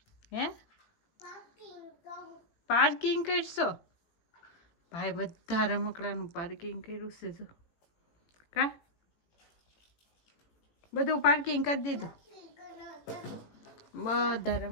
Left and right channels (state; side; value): late; right; 18 ms